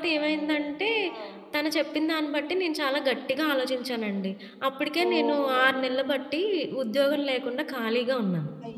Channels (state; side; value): identical; both; correlation 1.00